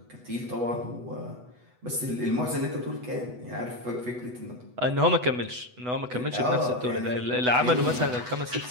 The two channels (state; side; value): late; left; 8.1 ms